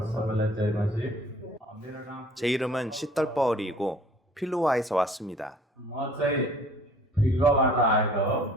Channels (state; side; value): normal; both; correlation 0.53